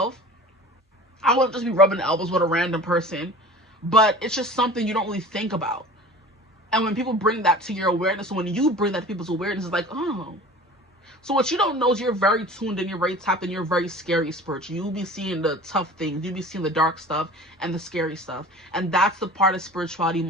I wouldn't just be rubbing elbows with a random person, but it's just something you don't really think about. And when people bring that to your awareness, and when you bring that to people's awareness, it's like, oh. So what you don't know is you're very tuned in, you're very tapped in, you're very scary spiritual. You'll be seeing the tough things, you'll be seeing the dark stuff and the scary stuff. And that's the part of spirituality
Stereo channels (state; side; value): normal; both; correlation 0.40